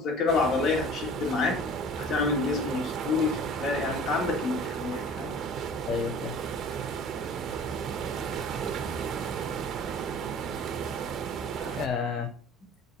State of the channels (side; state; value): both; normal; correlation 0.45